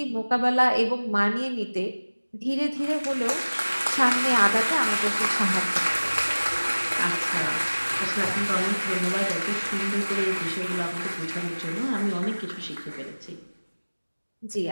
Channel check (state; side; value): inverted; both; correlation -1.00